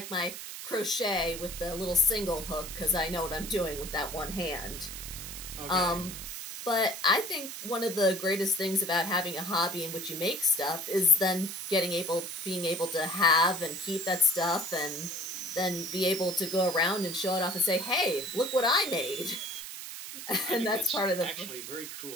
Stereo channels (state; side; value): noise; right; hiss, 9 dB below the sound